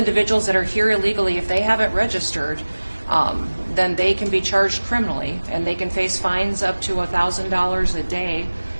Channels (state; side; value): inverted; both; correlation -1.00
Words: that are here illegally, if they haven't registered, then they can be charged criminally, and they can face fines up to $1,000 a day